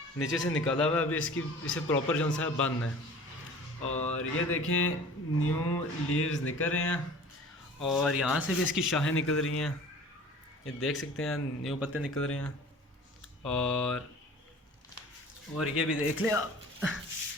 नीचे से निकाला हुआ है। अभी इसे प्रॉपर जो सा है बंद है। और ये देखें न्यू लीव्स निकल रहे हैं और यहाँ से भी इसकी शाखें निकल रही हैं, ये देख सकते हैं न्यू पत्ते निकल रहे हैं। और ये भी देख लें आप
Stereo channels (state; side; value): normal; both; correlation 0.43